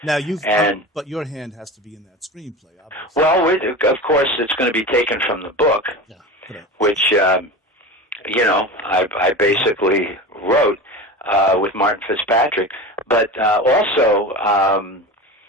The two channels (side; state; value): both; normal; correlation 0.29